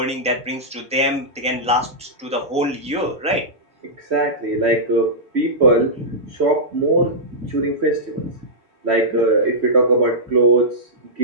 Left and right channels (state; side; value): normal; both; correlation -0.12